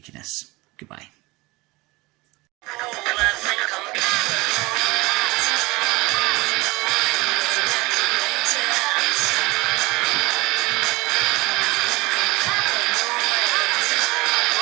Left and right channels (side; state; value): left; quieter; 22.5 dB